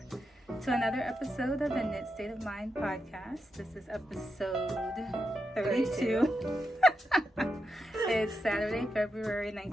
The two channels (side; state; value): both; normal; correlation 0.86